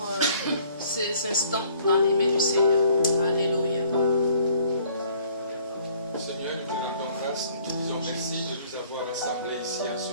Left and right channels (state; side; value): inverted; both; correlation -0.59